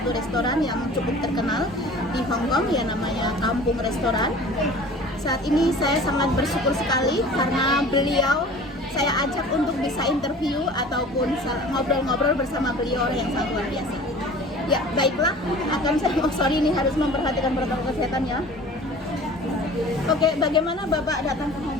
restoran yang cukup terkenal di Hong Kong, ya, namanya Kampung Restoran. Saat ini saya sangat bersyukur sekali karena beliau saya ajak untuk bisa interview ataupun ngobrol-ngobrol bersama beliau, orang yang sangat luar biasa. Ya, baiklah, sorry ini harus memperhatikan protokol kesehatan, ya. Oke, bagaimana Bapak datang ke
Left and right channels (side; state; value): both; normal; correlation 0.43